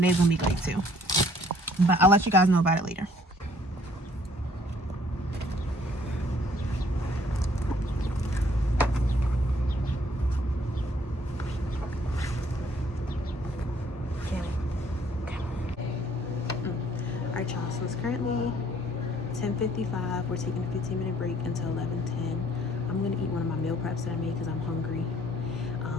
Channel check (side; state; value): both; normal; correlation 0.61